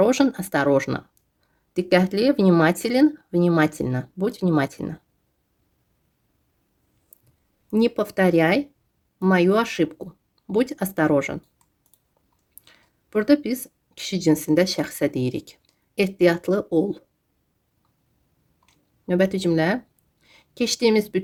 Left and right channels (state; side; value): identical; both; correlation 1.00